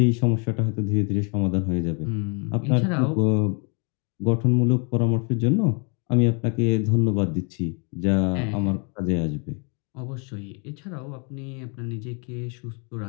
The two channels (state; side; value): quieter; right; 35.4 dB